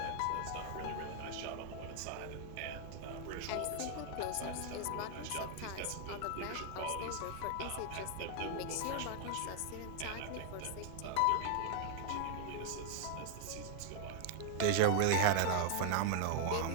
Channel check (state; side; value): different; both; correlation 0.00